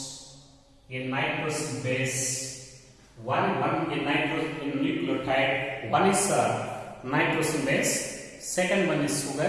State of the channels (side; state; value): both; identical; correlation 1.00